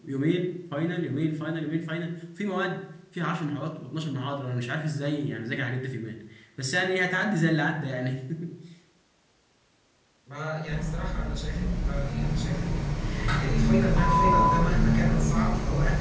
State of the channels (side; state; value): both; identical; correlation 1.00